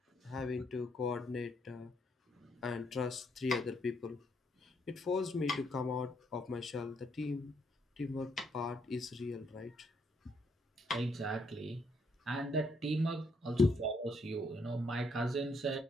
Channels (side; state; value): both; normal; correlation 0.73